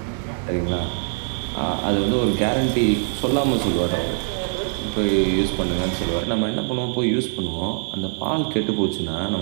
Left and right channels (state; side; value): silent; left; 64 dB below the other